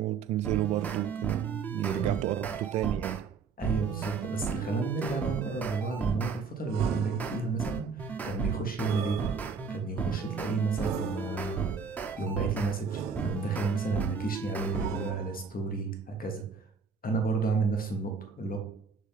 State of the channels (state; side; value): quieter; left; 5.3 dB